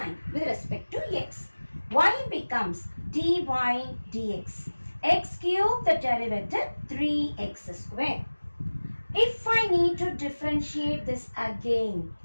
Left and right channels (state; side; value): inverted; both; correlation -1.00